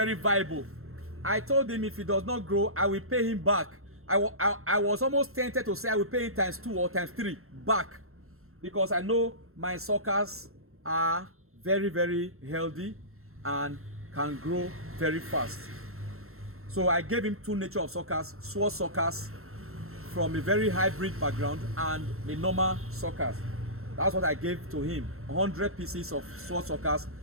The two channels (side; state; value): left; late; 0.62 ms